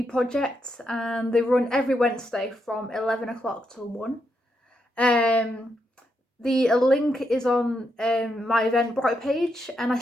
project and they run every Wednesday from 11 o'clock till 1. The link is on my Eventbrite page and I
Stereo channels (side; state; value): both; normal; correlation 0.81